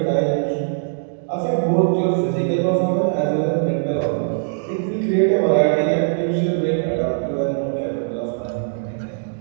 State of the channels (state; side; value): silent; left; 65 dB below the other